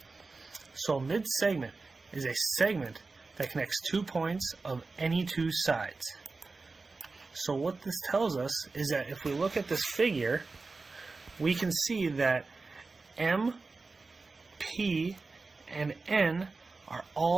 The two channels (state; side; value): quieter; left; 3.8 dB